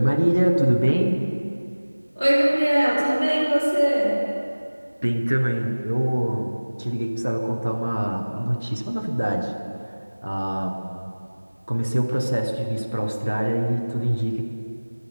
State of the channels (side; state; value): both; inverted; correlation -1.00